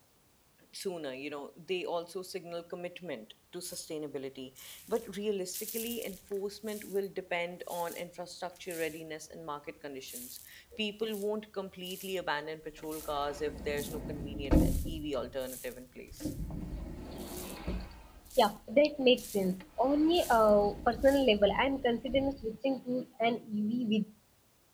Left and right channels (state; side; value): identical; both; correlation 1.00